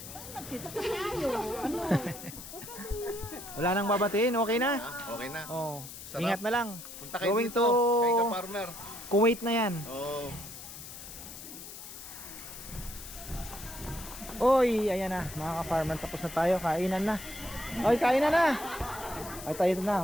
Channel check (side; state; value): left; noise; hiss, 12 dB below the sound